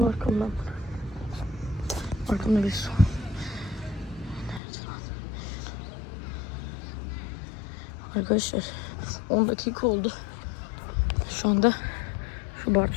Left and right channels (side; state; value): right; drops out; at 4.6 s